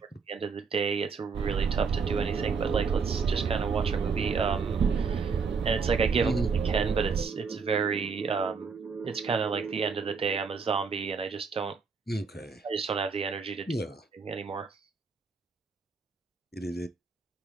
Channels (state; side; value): quieter; left; 5.3 dB